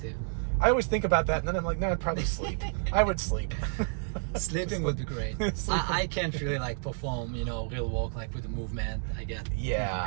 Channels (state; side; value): silent; left; 58 dB below the other